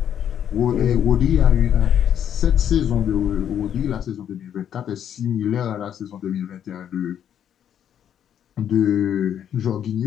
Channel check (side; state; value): right; quieter; 9.5 dB